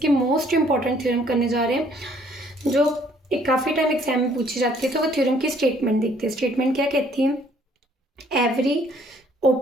मोस्ट इंपॉर्टेंट थ्योरम करने जा रहे हैं जो काफ़ी टाइम एग्जाम में पूछी जाती है। तो वो थ्योरम की स्टेटमेंट देखते हैं। स्टेटमेंट क्या कहती है? Every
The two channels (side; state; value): both; normal; correlation 0.62